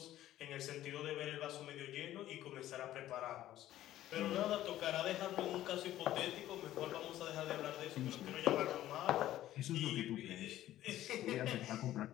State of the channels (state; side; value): quieter; right; 13.7 dB